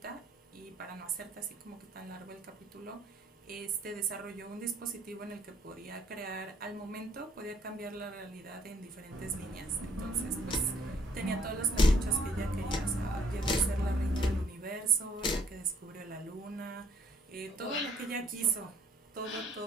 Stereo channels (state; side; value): normal; both; correlation 0.63